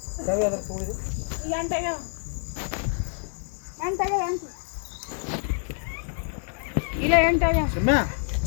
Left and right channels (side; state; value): right; silent; 60 dB below the other